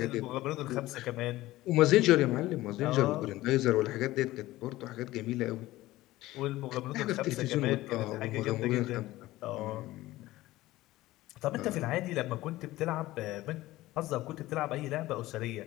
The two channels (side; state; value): right; quieter; 17.2 dB